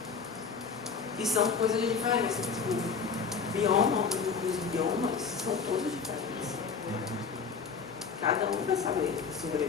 E são coisas diferentes. O bioma, os biomas são todos diferentes. Cada um vai saber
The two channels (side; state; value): right; quieter; 5.6 dB